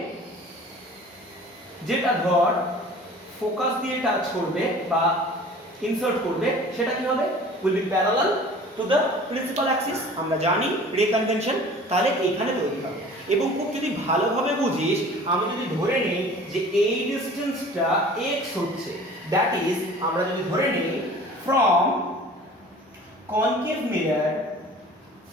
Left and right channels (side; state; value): both; normal; correlation 0.45